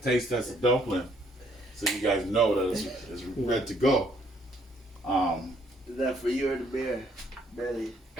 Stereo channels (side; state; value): both; normal; correlation 0.66